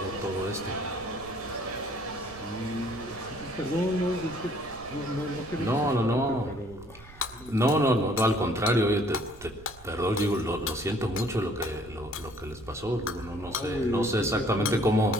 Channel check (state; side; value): noise; right; rumble, 21 dB below the sound